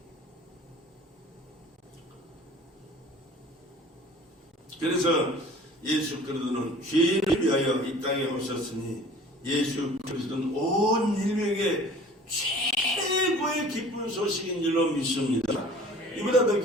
그래서 예수 그리스도는 죄인을 위하여 이 땅에 오셨으니 예수 그리스도는 온 인류에게 최고의 기쁜 소식인 줄로 믿습니다. 이보다 더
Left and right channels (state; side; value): normal; both; correlation 0.47